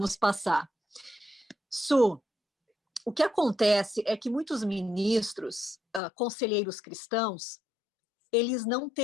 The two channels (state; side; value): drops out; right; at 6.0 s